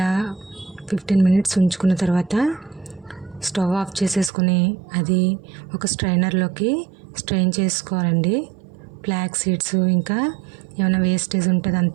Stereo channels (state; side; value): drops out; left; at 4.3 s